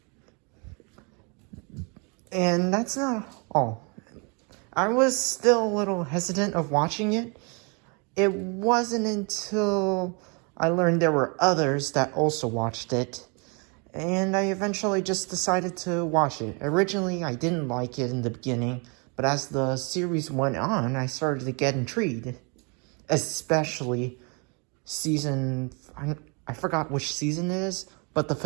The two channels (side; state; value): left; quieter; 33.4 dB